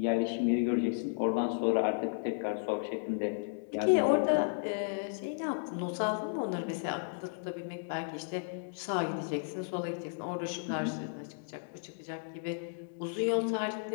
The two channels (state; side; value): silent; right; digital silence